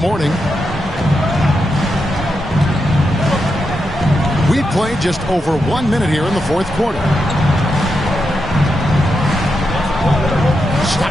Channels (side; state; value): both; normal; correlation 0.85